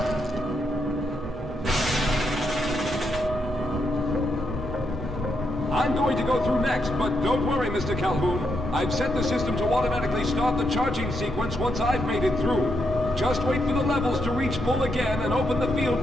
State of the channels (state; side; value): normal; both; correlation 0.80